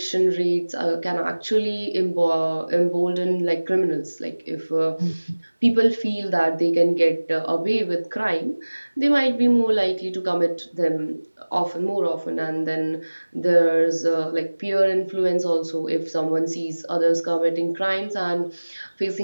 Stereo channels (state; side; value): inverted; both; correlation -1.00